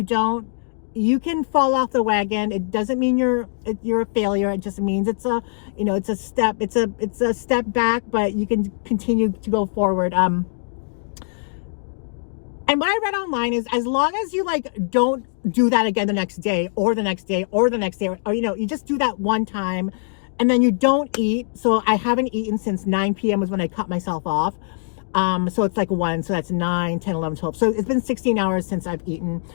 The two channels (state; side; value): silent; right; digital silence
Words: You can fall off the wagon. It doesn't mean you're a failure. It just means it's a step. It's a step back, but you can continue to go forward. And what I read online is, as long as you like don't do that again the next day or the next day or the next day, or you just do that one time, and then you don't eat. So I haven't eaten since 9 p.m. was when I cut myself off. So it's like 1, so that's 9, 10, 11, 12. So it's been 16 hours since I've eaten.